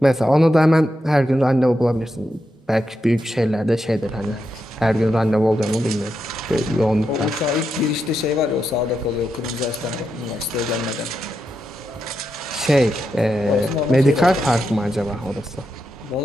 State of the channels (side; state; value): both; normal; correlation 0.85